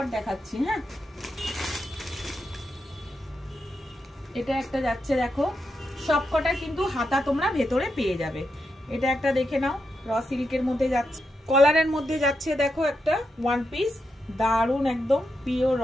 দেখাচ্ছি। হ্যাঁ, এটা একটা যাচ্ছে, দেখো সবকটা কিন্তু হাতা তোমরা ভেতরে পেয়ে যাবে। এটা একটা দেখে নাও, র সিল্কের মধ্যে যাচ্ছে, কলারের মধ্যে যাচ্ছে। দেখো একটা ওয়ান পিস, দারুণ একদম পিওর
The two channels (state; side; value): normal; both; correlation 0.85